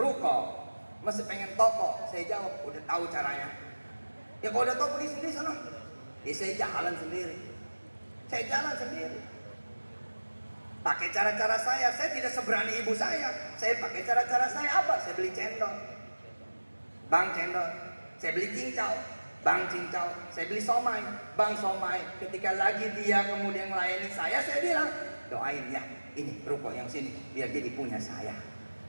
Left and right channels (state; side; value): inverted; both; correlation -1.00